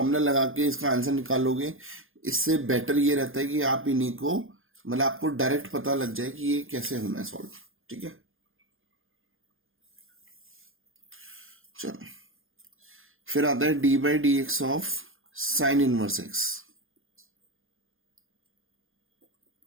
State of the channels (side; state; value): left; late; 0.59 ms